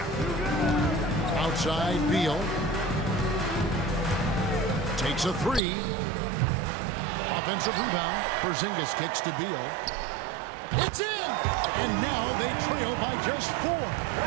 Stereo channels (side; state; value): left; drops out; at 5.6 s